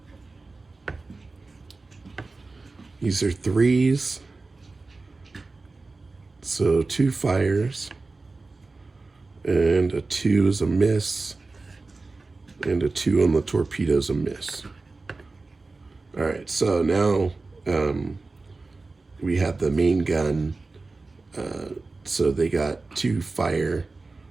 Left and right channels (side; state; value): left; quieter; 3.6 dB